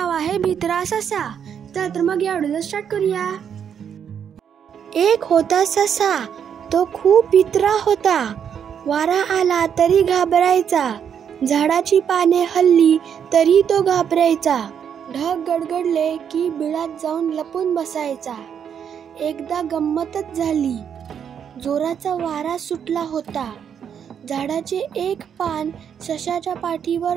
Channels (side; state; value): left; quieter; 8.1 dB